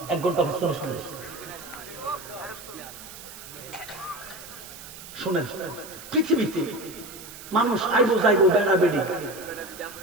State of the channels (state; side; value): noise; right; hiss, 15 dB below the sound